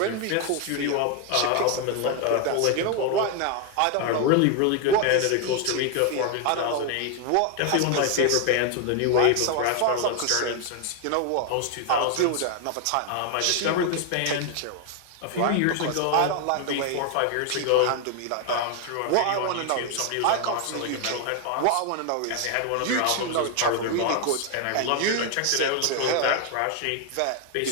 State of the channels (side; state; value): both; different; correlation 0.01